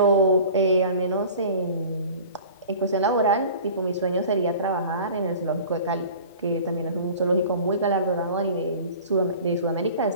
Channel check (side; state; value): both; inverted; correlation -0.42